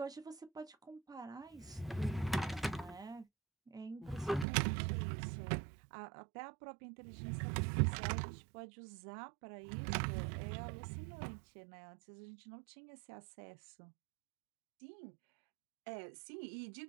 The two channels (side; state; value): left; drops out; at 4.5 s